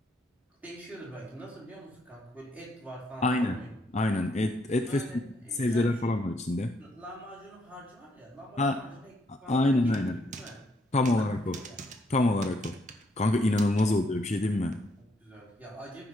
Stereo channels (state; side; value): normal; both; correlation 0.73